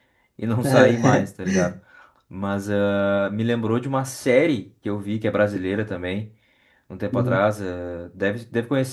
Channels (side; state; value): both; identical; correlation 1.00